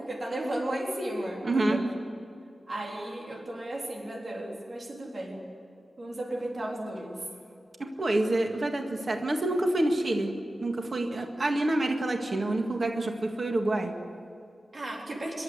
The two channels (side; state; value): both; normal; correlation 0.94